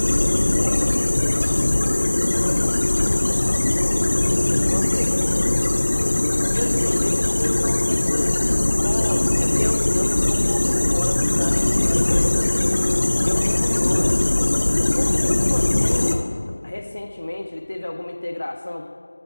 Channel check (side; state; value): both; inverted; correlation -1.00